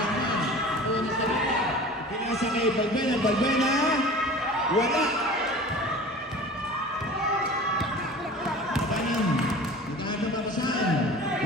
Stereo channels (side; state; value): both; normal; correlation 0.40